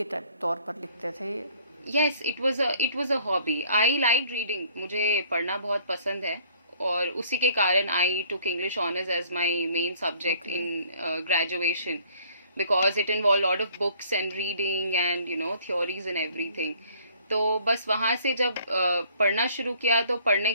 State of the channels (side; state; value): both; inverted; correlation -0.57